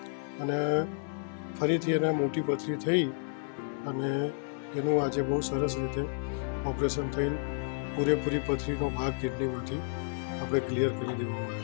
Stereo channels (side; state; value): right; silent; digital silence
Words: અને ફરીથી એને મોટી પથરી થઈ અને એનું આજે બહુ સરસ રીતે ઓપરેશન થઈને પૂરેપૂરી પથરીનો ભાગ કિડનીમાંથી આપણે ક્લિયર કરી દેવામાં